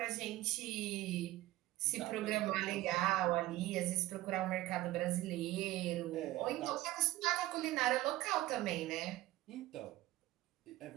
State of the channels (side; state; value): left; quieter; 16.8 dB